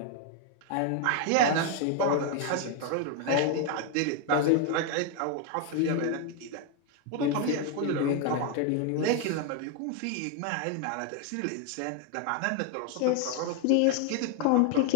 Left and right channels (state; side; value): different; both; correlation 0.01